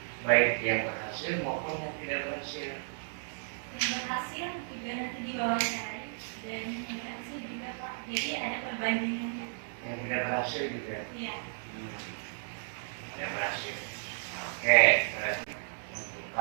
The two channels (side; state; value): left; silent; digital silence